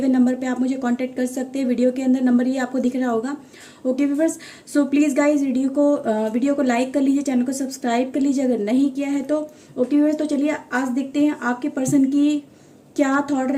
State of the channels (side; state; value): both; identical; correlation 1.00